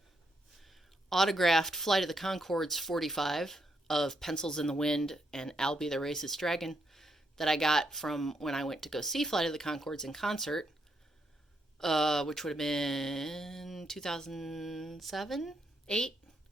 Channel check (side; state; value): both; normal; correlation 0.78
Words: autographed Flight of the Conchords 45 of Pencils in the Wind and Albie the Racist Dragon that I got from when I went to go see Flight of the Conchords in concert, which would have been 2007, 8,